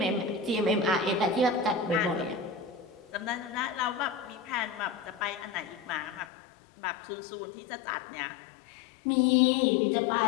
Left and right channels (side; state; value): right; drops out; at 6.2 s